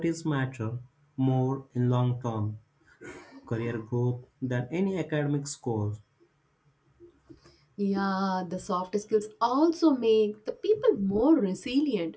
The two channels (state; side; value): identical; both; correlation 1.00